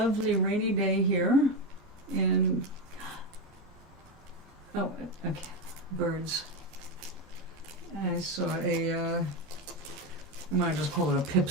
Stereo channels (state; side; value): normal; both; correlation 0.13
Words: rainy day here in, oh, okay, birds. I saw I might just call it a